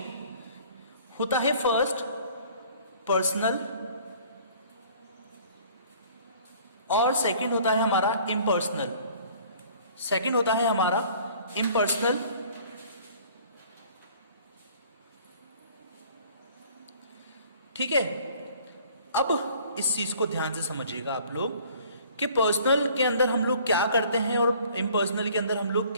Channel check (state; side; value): inverted; both; correlation -0.53